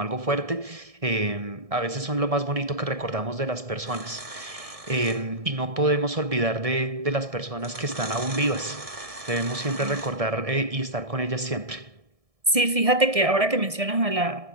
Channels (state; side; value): late; left; 1.7 ms